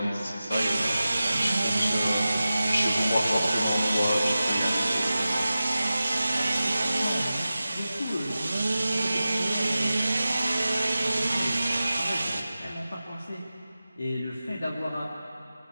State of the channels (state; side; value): inverted; both; correlation -0.95